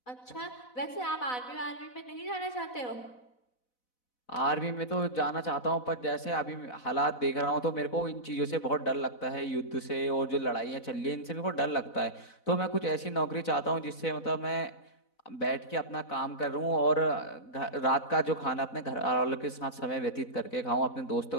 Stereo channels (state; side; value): late; right; 4.0 ms